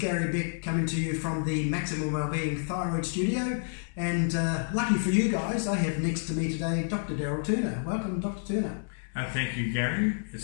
Beck coming to you from the Maximum Wellbeing Thyroid Studio, and lucky for you guys, I have next to me today Dr Daryl Turner. Welcome Dr Turner. Thank you Gary,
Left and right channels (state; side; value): silent; right; digital silence